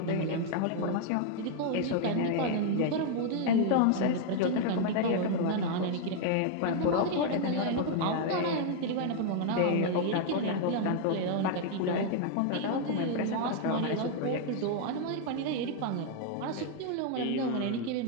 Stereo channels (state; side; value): different; both; correlation 0.00